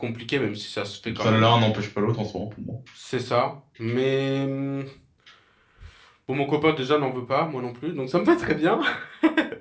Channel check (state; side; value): identical; both; correlation 1.00